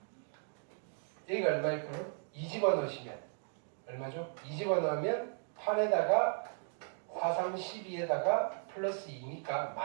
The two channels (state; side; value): silent; left; 54 dB below the other